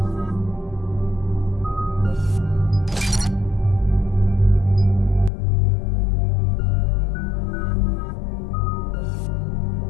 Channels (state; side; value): drops out; right; at 5.3 s